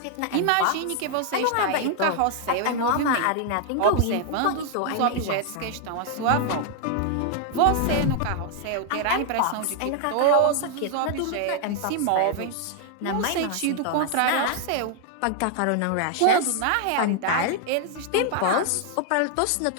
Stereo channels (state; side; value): different; both; correlation 0.00